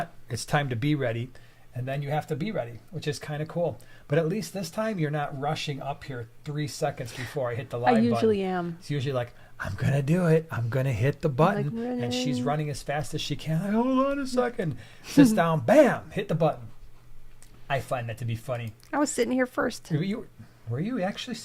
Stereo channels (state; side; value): identical; both; correlation 1.00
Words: It's time to be ready. And then you have to be ready, which is kind of cool. But at least this time you're not rushing up here 3 seconds before I hit the live button. I usually am. It's usually like, I'm going to do it. I'm going to hit the button. And she's running as fast as she can. Like, hold on a second. Sits down, bam, hit the button. I find that to be funny. I was sitting here first. Were you actually